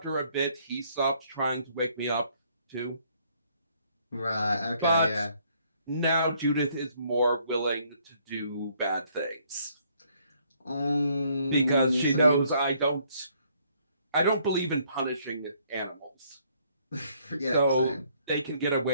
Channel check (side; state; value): both; inverted; correlation -0.66